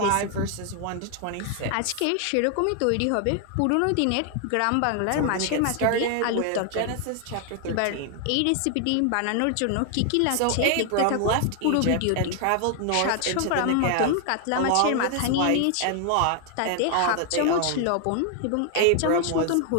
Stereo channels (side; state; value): both; different; correlation 0.00